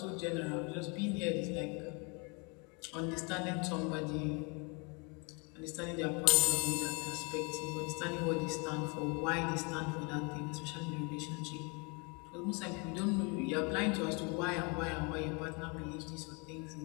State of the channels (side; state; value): right; quieter; 32.2 dB